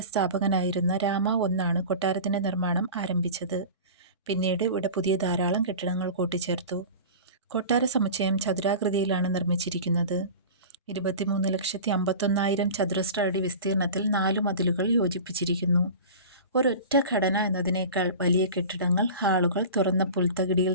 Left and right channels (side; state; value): both; inverted; correlation -0.35